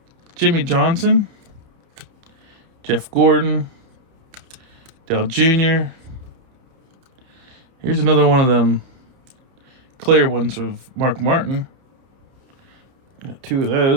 Jimmy Johnson, Jeff Gordon, Dale Jr. Here's another one of them clear ones of Mark Martin. Got 2 of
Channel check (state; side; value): late; left; 30 ms